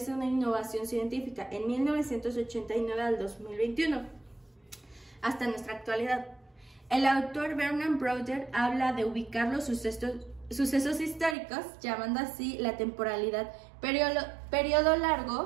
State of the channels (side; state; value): left; drops out; at 11.4 s